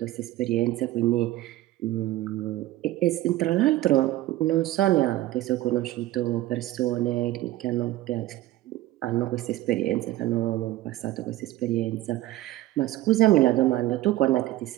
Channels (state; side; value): quieter; left; 15.7 dB